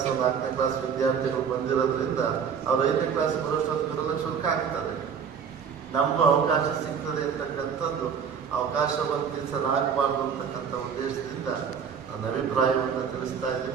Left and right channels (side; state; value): left; quieter; 6.9 dB